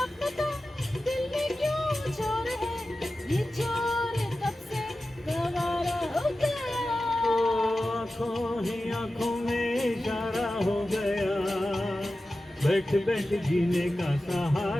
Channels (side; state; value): both; normal; correlation 0.94